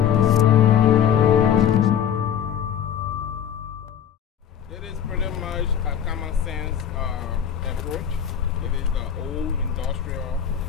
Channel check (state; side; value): quieter; right; 9.0 dB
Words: It is pretty much a common sense approach. It is the old industrial